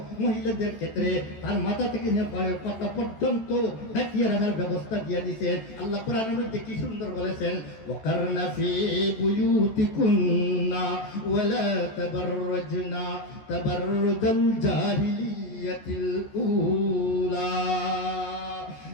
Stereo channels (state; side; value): late; right; 14 ms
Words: মহিলাদের ক্ষেত্রে তার মাথা থেকে নিয়ে পায়ের পাতা পর্যন্ত ঢাকিয়ে রাখার ব্যবস্থা দিয়ে দিয়েছেন। আল্লাহ কোরআনের মধ্যে কি সুন্দর বলেছেন, ওয়াকারনা ফি বুয়ুতিকুন্না ওয়ালা তাবাররাজনা তাবাররুজাল জাহিলিয়াতিল উলা।